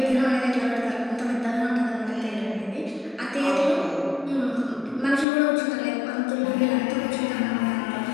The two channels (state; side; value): drops out; right; at 5.2 s